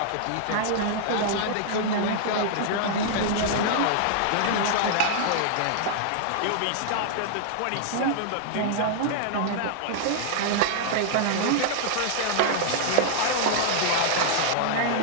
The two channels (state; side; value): different; both; correlation -0.01